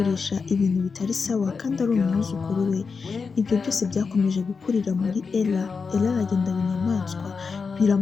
ibintu bitari sawa kandi ari umwuzukuru we. Ibyo byose byakomeje gukurira muri Ella. Ella aragenda binyamaswa,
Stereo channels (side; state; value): right; quieter; 5.1 dB